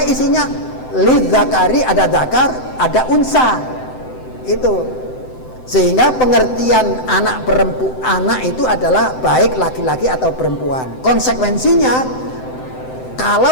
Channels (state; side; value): late; right; 7.8 ms